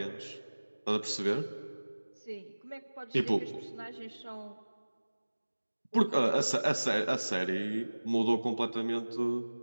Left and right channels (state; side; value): inverted; both; correlation -1.00